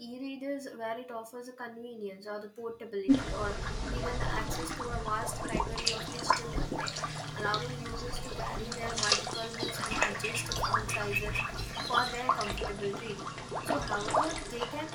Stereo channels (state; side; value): identical; both; correlation 1.00